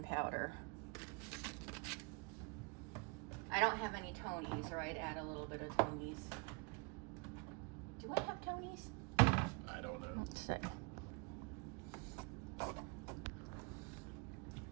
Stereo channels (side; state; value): left; quieter; 30.4 dB